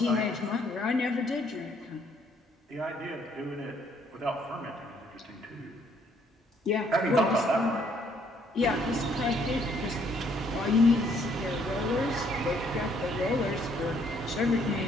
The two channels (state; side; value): normal; both; correlation 0.66